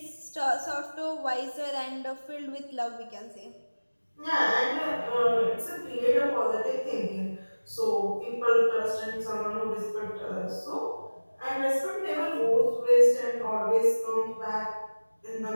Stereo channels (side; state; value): both; inverted; correlation -1.00